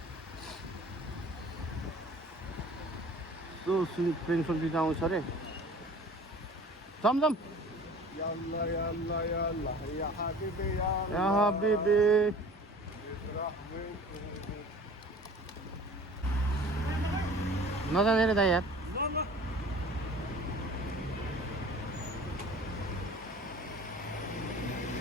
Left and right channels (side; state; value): both; normal; correlation 0.44